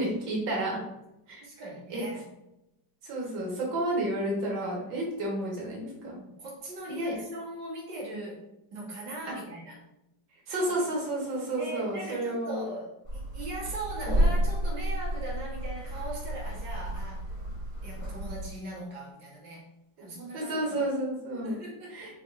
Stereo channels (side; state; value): left; late; 4.9 ms